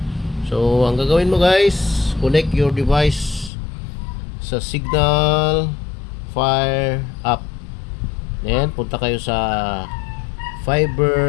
So ang gagawin mo guys, connect your device sa Signal Fire app. Then punta kayo sa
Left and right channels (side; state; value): right; drops out; at 3.5 s